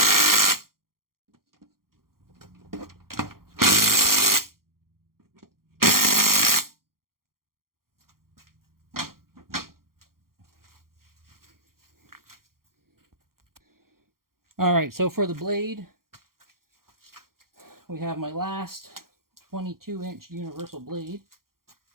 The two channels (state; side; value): late; left; 0.92 ms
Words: Alright, so for the blade, we have my last 22-inch universal blade.